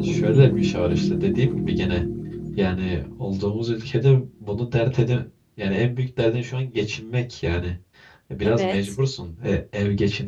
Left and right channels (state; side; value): identical; both; correlation 1.00